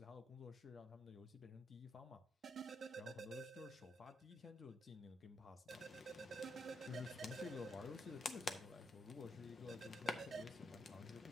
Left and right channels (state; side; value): normal; both; correlation 0.79